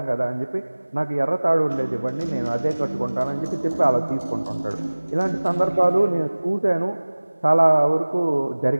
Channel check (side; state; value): both; inverted; correlation -1.00